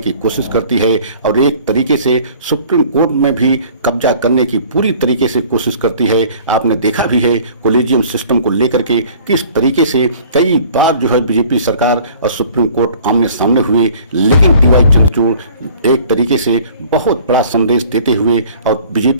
कोशिश करती है और एक तरीके से सुप्रीम कोर्ट में भी कब्जा करने की पूरी तरीके से कोशिश करती है। आपने देखा भी है कोलेजियम सिस्टम को लेकर के किस तरीके से कई बार जो है बीजेपी सरकार और सुप्रीम कोर्ट आमने सामने हुए, लेकिन DY चंद्रचूड़ एक तरीके से बहुत बड़ा संदेश देते हुए और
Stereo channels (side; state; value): both; inverted; correlation -0.50